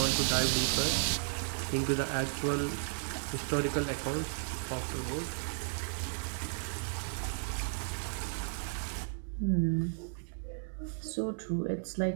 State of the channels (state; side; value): silent; left; digital silence